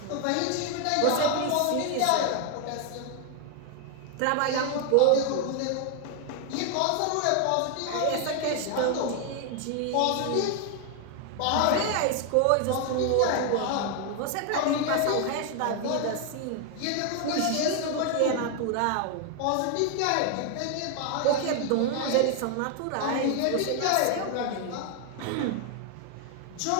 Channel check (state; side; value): different; both; correlation 0.00